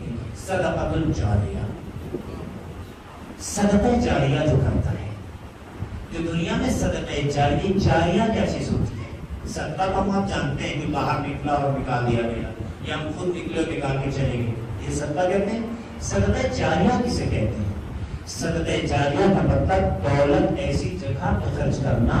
گئی ہے، صدقۃ الجاریہ، صدقہ جاریہ جو کرتا ہے۔ جو دنیا میں صدقہ جاریہ کیا چیز ہوتی ہے؟ صدقہ کو آپ جانتے ہیں کہ باہر نکلا اور نکال دیا گیا، یا ہم خود نکلے اور نکال کے چلے گئے، یہ صدقہ کہتے ہیں۔ صدقہ جاریہ کسے کہتے ہیں؟ صدقہ جاریہ کا مطلب دولت ایسی جگہ پہ خرچ کرنا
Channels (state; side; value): identical; both; correlation 1.00